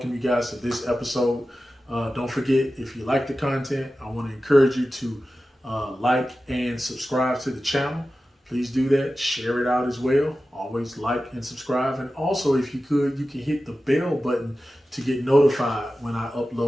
you guys to this episode. Don't forget, if you like the content, I want to encourage you to like and subscribe to the channel. Please do that. Share it out as well. Always like and subscribe. And also, if you could, you can hit the bell button to get notified when I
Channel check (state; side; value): normal; both; correlation 0.94